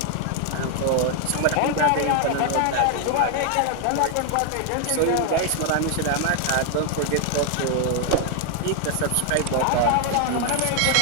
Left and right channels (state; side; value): different; both; correlation 0.00